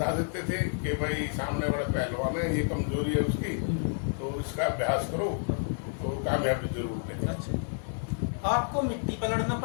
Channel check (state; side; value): silent; right; 58 dB below the other